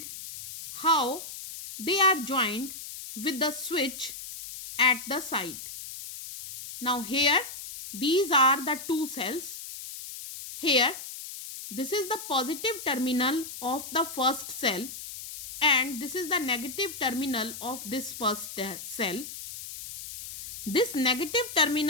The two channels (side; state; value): left; noise; hiss, 10 dB below the sound